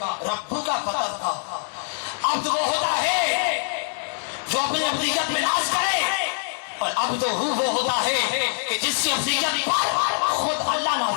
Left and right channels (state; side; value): silent; right; 63 dB below the other